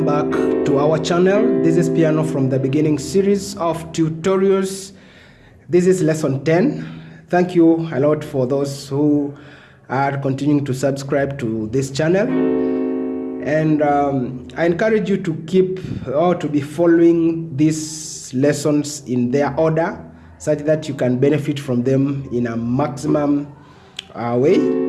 back to our channel. This is Piano from the Beginning series of tutorials. This is lesson 10. Thank you a lot for those who are continuing to subscribe to this channel. And I encourage you to keep or to be following these lessons in their order such that you can benefit from them in a maximum way.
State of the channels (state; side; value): identical; both; correlation 1.00